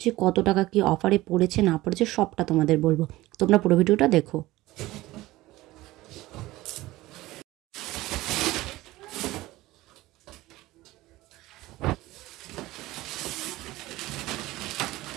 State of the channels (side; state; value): left; quieter; 18.0 dB